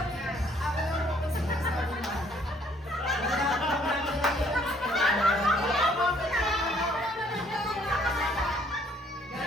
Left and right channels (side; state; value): both; normal; correlation 0.63